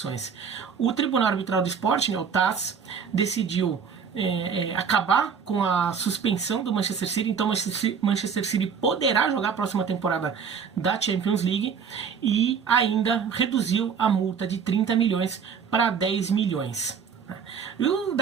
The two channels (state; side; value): quieter; left; 6.6 dB